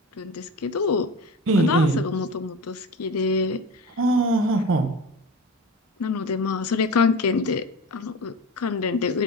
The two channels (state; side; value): normal; both; correlation 0.31